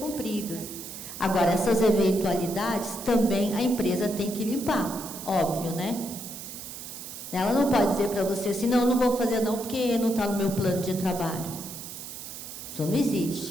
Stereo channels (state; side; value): noise; right; hiss, 11 dB below the sound